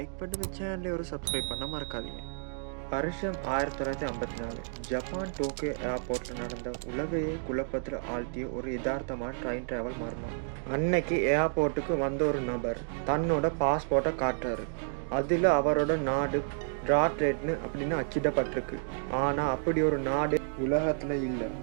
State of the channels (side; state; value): left; silent; digital silence